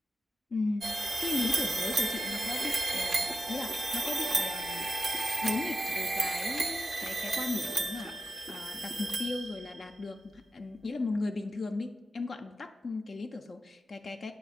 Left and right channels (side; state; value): both; normal; correlation 0.89